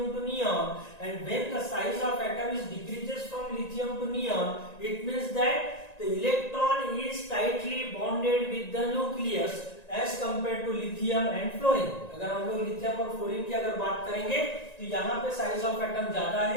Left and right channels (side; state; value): right; late; 1.9 ms